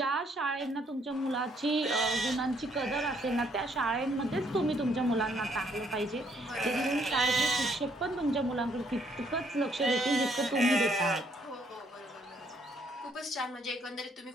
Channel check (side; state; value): both; normal; correlation 0.68